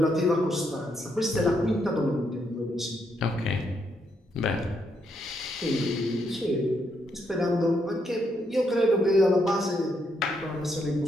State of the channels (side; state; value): both; normal; correlation 0.77